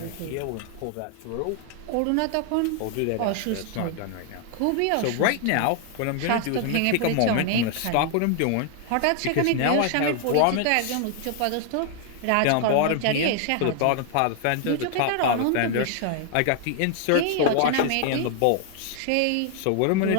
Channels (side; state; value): both; different; correlation 0.00